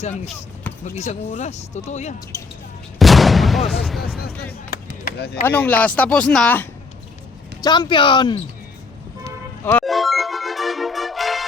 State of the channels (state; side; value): quieter; right; 4.2 dB